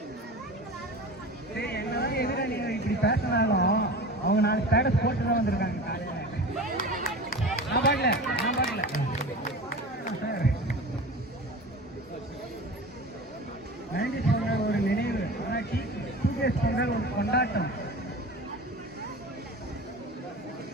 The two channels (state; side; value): normal; both; correlation 0.34